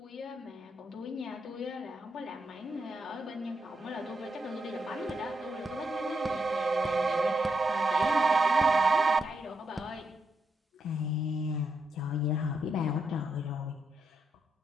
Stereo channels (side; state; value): both; normal; correlation 0.81